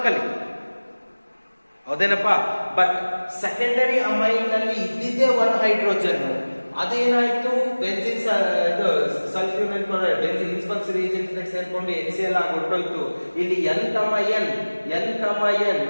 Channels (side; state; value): both; inverted; correlation -1.00